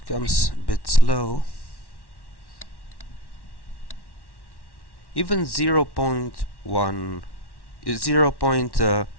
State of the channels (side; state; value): right; late; 1.1 ms